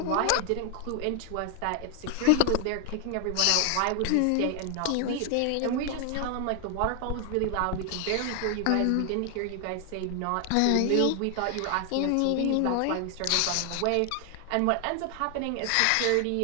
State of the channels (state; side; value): different; both; correlation 0.00